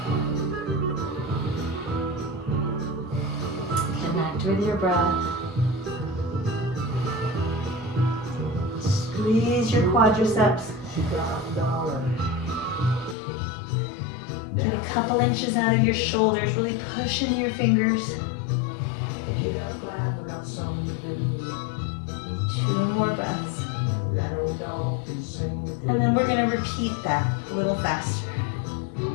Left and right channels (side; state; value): right; drops out; at 13.2 s